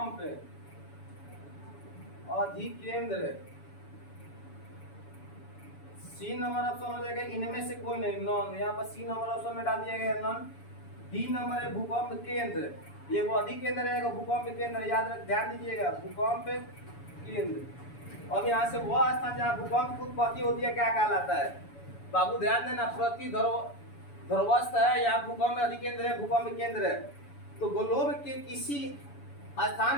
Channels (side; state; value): right; late; 7.0 ms